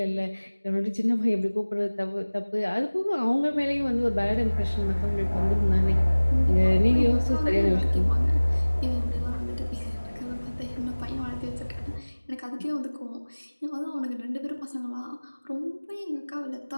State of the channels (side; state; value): both; inverted; correlation -1.00